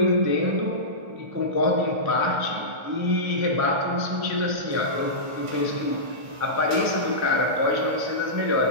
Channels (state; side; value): late; left; 1.5 ms